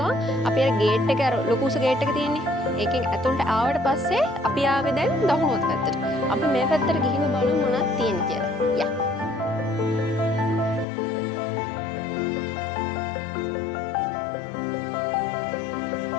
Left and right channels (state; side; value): drops out; right; at 10.9 s